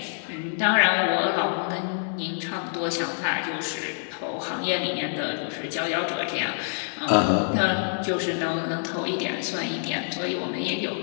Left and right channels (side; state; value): right; silent; digital silence